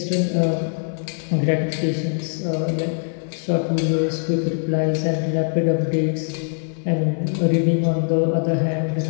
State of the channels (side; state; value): right; silent; 64 dB below the other